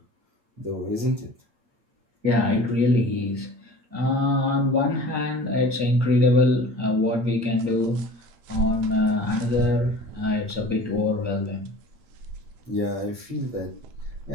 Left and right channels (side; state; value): left; late; 8.5 ms